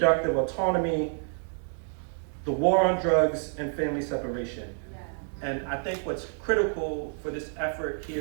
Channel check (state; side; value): silent; left; 56 dB below the other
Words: autonomy, the war on drugs, and family separation. And I think what's critical for this effort